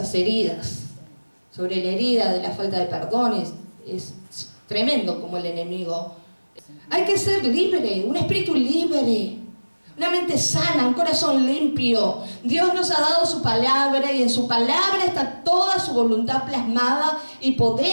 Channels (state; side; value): inverted; both; correlation -1.00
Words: heridas, sobre la herida de la falta de perdón. Es tremendo como el enemigo Hay que ser libre, un espíritu libre, una mente sana, un corazón limpio. Dios nos ha dado su palabra y en su palabra está toda su voluntad plasmada y